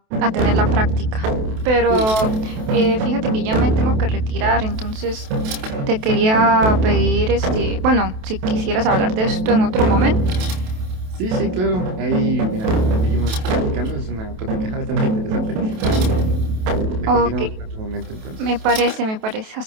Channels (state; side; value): late; left; 28 ms